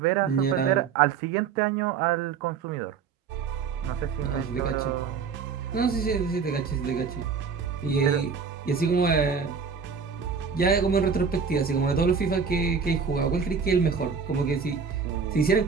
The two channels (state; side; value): quieter; left; 5.9 dB